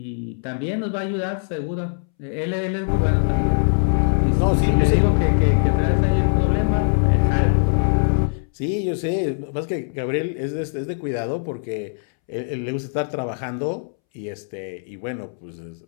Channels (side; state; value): right; silent; 64 dB below the other